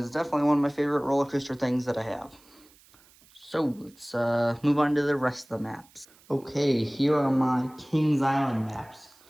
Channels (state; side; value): noise; right; hiss, 28 dB below the sound